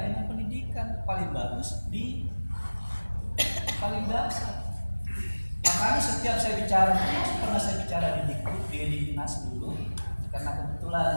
dengan pendidikan. Paling bagus di paling dasar. Makanya setiap saya bicara, pernah saya bicara di Dinas dulu, karena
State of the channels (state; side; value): inverted; both; correlation -1.00